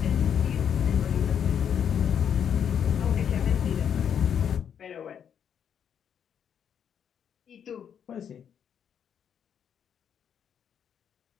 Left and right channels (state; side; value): quieter; right; 8.3 dB